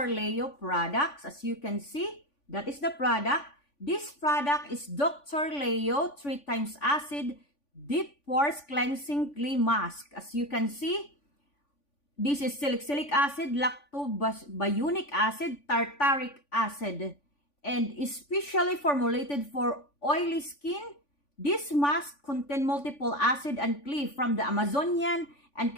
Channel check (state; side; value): late; right; 3.5 ms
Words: Leo products. As you can see, that is the product. This product is Dr. Leo 3 times acid deep pores cleansing clay mask. As you can see, this is salicylic acid, lactobionic acid, tartaric acid, and especially formulated for oily skin. This mask contains multiple acid and clay from the Amazonian and